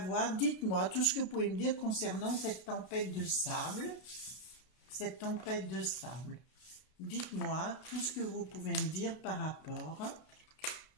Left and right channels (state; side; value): late; right; 32 ms